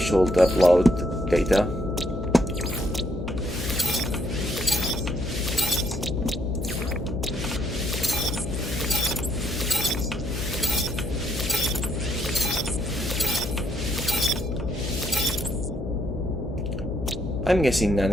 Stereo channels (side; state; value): left; noise; hum, 6 dB below the sound